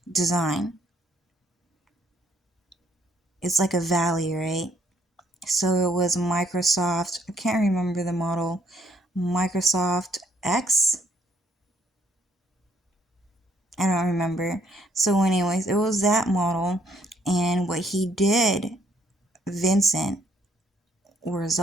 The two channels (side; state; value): both; normal; correlation 0.67